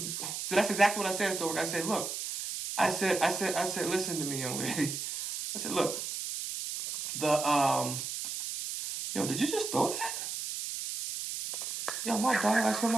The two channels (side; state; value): right; noise; hiss, 5 dB below the sound